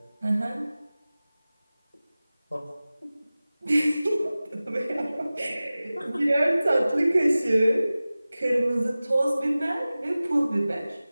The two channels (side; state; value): both; inverted; correlation -0.97